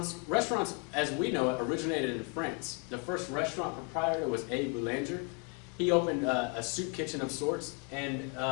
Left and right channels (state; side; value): quieter; right; 36.1 dB